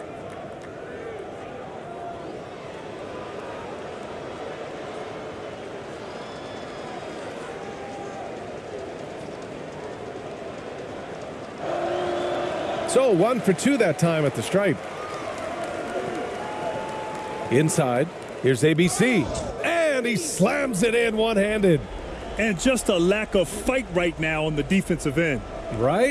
So 1 for 2 that time at the stripe. Inside, here's ABC, and he slams it in one-handed. And just a lack of fight right now on the defensive end.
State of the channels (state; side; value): identical; both; correlation 1.00